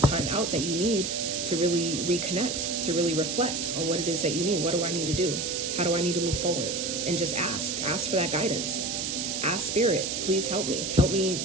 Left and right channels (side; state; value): right; noise; hiss, 2 dB below the sound